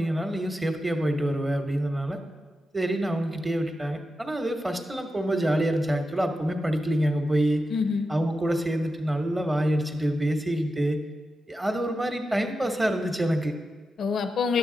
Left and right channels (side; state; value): both; normal; correlation 0.90